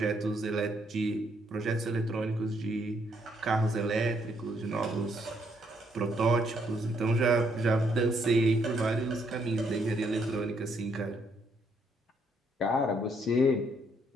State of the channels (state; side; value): normal; both; correlation 0.72